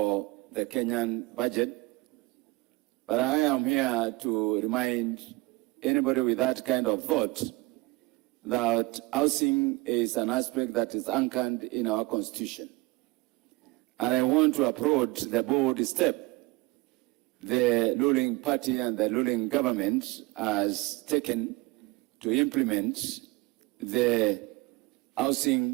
the Kenyan budget, but I am here to remind anybody with that kind of thought that housing is an aspect that is anchored in our Constitution. And I want to applaud the bold step the ruling party and the ruling government has taken to implement the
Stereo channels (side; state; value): left; quieter; 23.0 dB